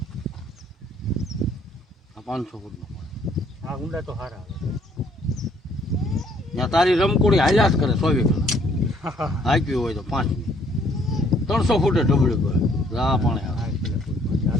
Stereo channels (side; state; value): both; normal; correlation 0.63